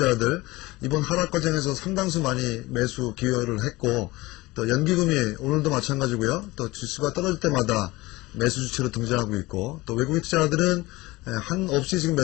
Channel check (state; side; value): quieter; right; 20.7 dB